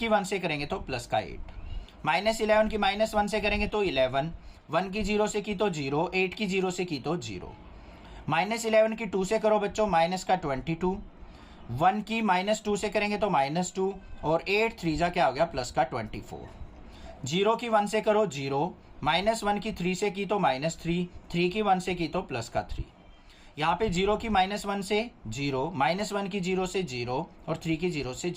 1 से करेंगे तो प्लस का 8, -11 की -1 से करेंगे तो 11, 1 की 0 से की तो 0, 8 की 0 से की तो 0, -11 की 2 से करो बच्चों माइनस का 22, 1 की -2 से करेंगे तो -2 और 8 3 जा क्या हो गया प्लस का 24, 0 की 1 से करो 0, -1 की 3 से की तो -3, 3 की 1 से की तो प्लस का 3। यहाँ पे 0 की -1 से 0, -1 की 0 से 0 और 3 की 0 से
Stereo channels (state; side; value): identical; both; correlation 1.00